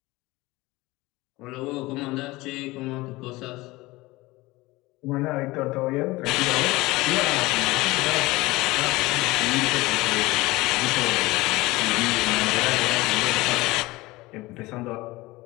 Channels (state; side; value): quieter; right; 20.7 dB